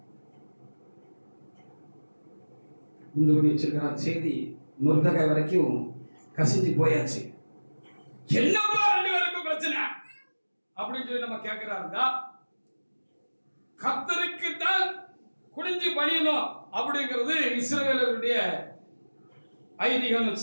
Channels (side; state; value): both; inverted; correlation -1.00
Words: குண்டு பண்ணி வச்சிருக்கிறான். செய்தி மொர்தெகாய் வரைக்கும் கசிஞ்சு போயாச்சு. என்னப்பா 2 பேருக்கும் பிரச்சனை அப்படின்னு சொல்லி நம்ம கேட்கிறாருந்தா, கர்த்தருக்கு தான் குனிஞ்சு பணியணும் அப்படிங்கிறது இஸ்ரவேலருடைய ஐதீகம்